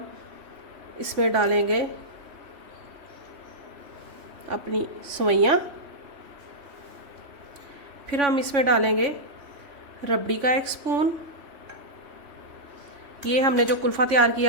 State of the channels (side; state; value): left; late; 3.5 ms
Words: इसमें डालेंगे अपनी सवैयाँ, फिर हम इसमें डालेंगे रबड़ी का 1 स्पून। ये हमने जो कुल्फ़ा तैयार